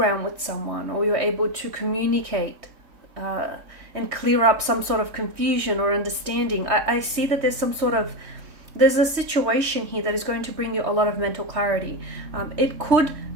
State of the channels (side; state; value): left; late; 3.2 ms